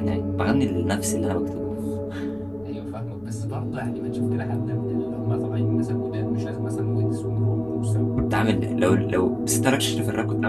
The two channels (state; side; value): noise; left; rumble, 25 dB below the sound